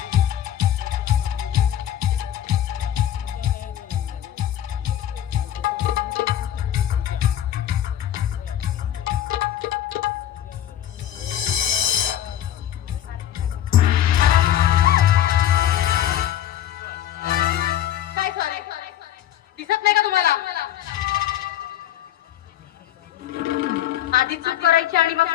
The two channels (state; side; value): quieter; right; 11.3 dB